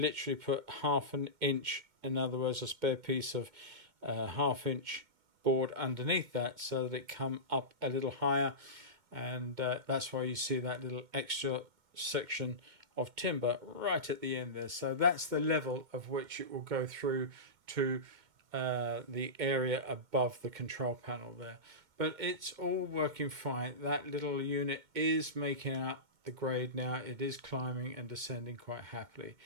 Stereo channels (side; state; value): left; late; 2.1 ms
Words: put 1/2 inch, in other words a spare piece of 1/2 inch board underneath that so that it come up a little higher, and that's why you see that little extra section of timber right at the end there. So that's the level of which it will go through to the area above the control panel there. But it's all working fine. That little unit is making up the grade now. It is climbing and descending quite happily.